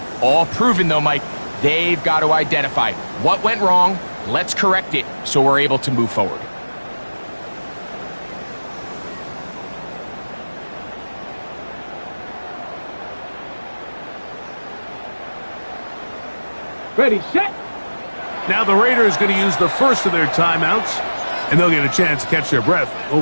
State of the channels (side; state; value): both; inverted; correlation -1.00